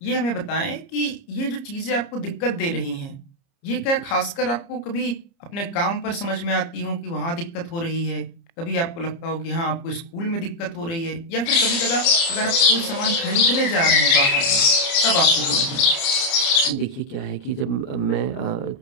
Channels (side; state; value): right; late; 30 ms